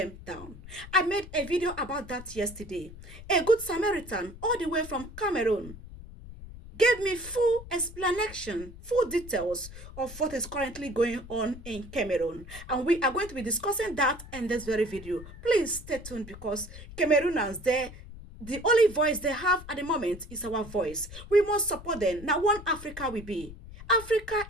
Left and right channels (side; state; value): left; noise; rumble, 15 dB below the sound